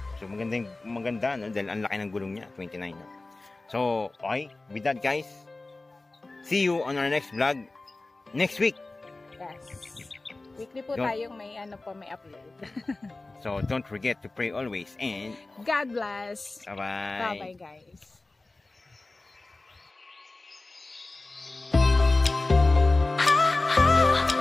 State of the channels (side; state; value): right; quieter; 3.2 dB